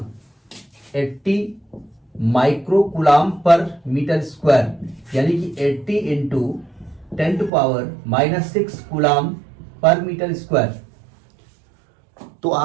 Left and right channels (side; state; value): left; drops out; at 7.5 s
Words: 80 microcoulomb per metre square, यानी कि 80 into 10⁻⁻6 coulomb per metre square. तो